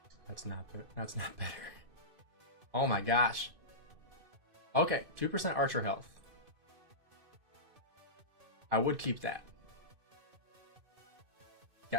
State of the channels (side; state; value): left; late; 2.6 ms